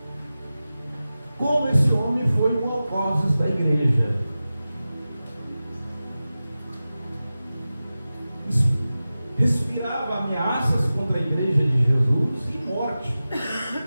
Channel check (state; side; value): inverted; both; correlation -0.95